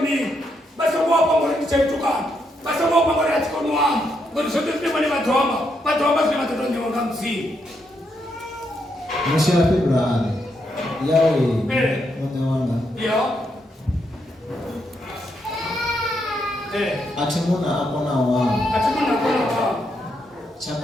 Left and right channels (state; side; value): normal; both; correlation 0.79